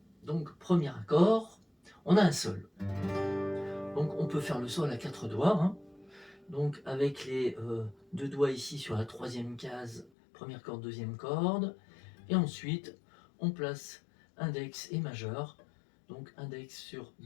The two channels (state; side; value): drops out; right; at 10.1 s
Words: Donc, premier accord, on a un sol. Donc, on peut faire le sol à 4 doigts. Hein. Donc, avec les deux doigts ici sur la troisième case, première corde, deuxième corde. Et ensuite, on place index et majeur. Donc, index sur